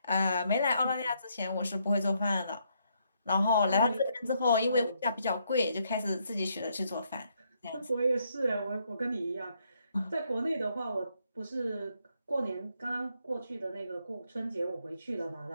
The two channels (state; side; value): inverted; both; correlation -0.74